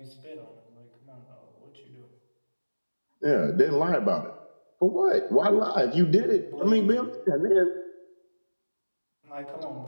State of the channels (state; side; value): inverted; both; correlation -1.00